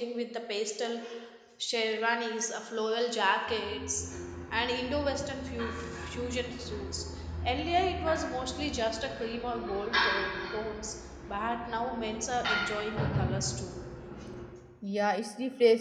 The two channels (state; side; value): identical; both; correlation 1.00